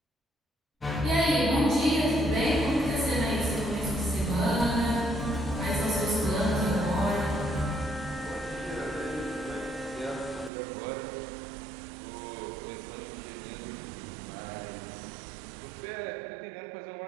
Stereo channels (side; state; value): left; drops out; at 10.5 s